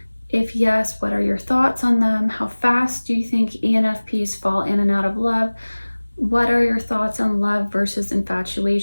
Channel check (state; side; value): inverted; both; correlation -1.00